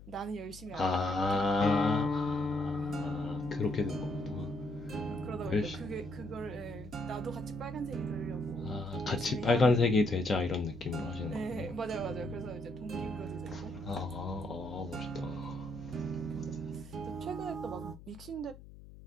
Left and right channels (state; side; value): noise; left; hum, 17 dB below the sound